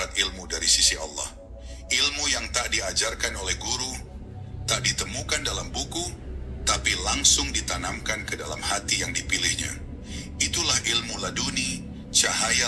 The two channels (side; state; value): both; identical; correlation 1.00